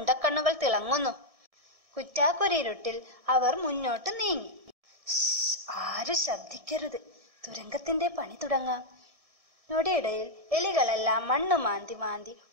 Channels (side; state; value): left; late; 1.6 ms